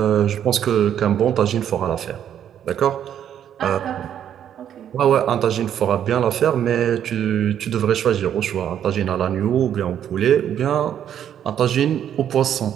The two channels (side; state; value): left; quieter; 9.8 dB